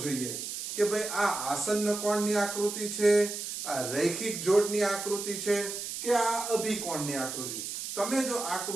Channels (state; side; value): noise; right; hiss, 6 dB below the sound